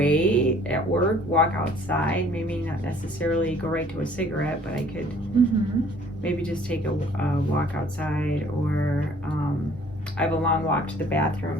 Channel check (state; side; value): normal; both; correlation 0.56